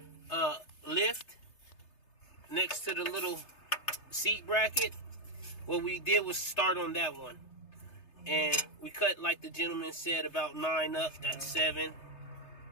lift next to the little seat bracket, what we did was start on that one. And we cut, like the gentleman said, about 9 up. That's 7.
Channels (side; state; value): right; late; 3.3 ms